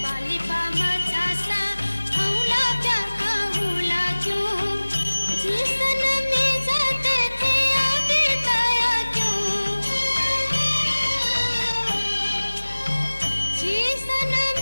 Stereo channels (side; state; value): both; inverted; correlation -1.00